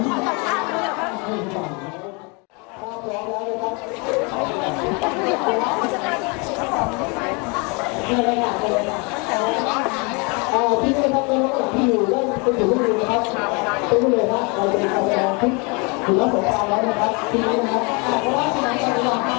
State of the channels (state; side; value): quieter; right; 31.1 dB